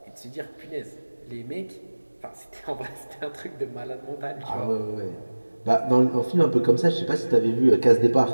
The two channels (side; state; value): both; inverted; correlation -1.00